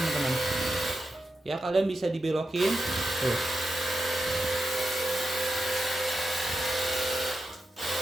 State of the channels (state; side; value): normal; both; correlation 0.89